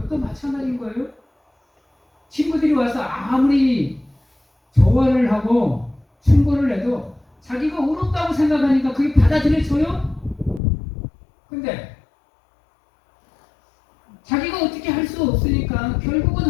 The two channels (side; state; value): right; drops out; at 10.6 s